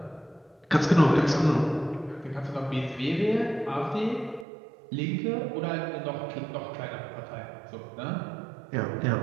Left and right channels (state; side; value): drops out; left; at 4.5 s